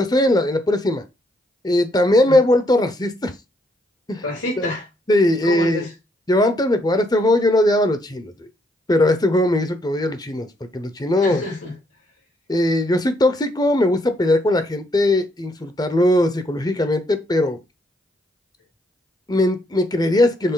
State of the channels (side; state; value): both; normal; correlation 0.72